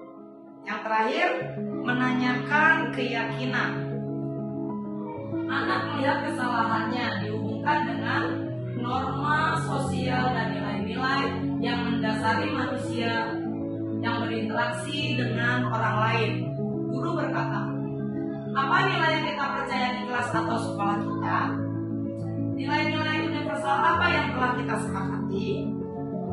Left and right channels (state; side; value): identical; both; correlation 1.00